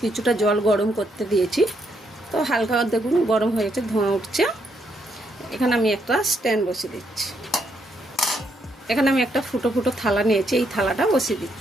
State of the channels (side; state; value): both; normal; correlation 0.76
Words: কিছুটা জল গরম করতে দিয়েছি। তো হালকা দেখুন গরম হয়ে গেছে, ধোঁয়া উঠছে। এখানে আমি একটা স্ট্যান্ড বসিয়ে দিচ্ছি। এখানে আমি একটা ফুটো ফুটো থালা নিয়েছি, এই থালাটা বসিয়ে